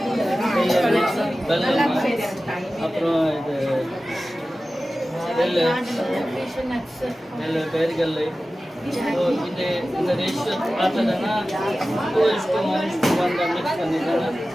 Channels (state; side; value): normal; both; correlation 0.95